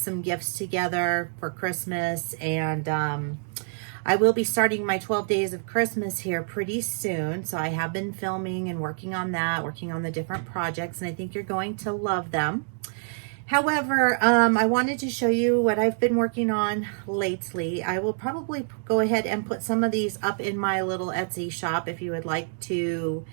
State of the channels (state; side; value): silent; left; 61 dB below the other